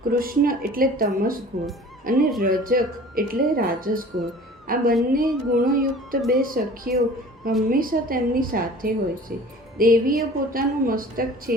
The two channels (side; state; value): both; normal; correlation 0.45